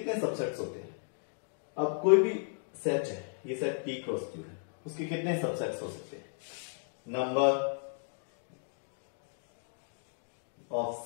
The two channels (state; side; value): silent; right; 55 dB below the other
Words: सबसेट्स होते हैं? अब कोई भी सेट है, ये सेट P क्रॉस Q है, उसके कितने सबसेट्स हो सकते हैं? Number of